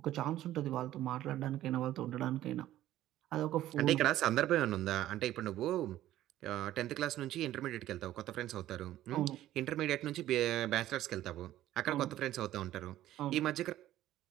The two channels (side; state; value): left; quieter; 13.7 dB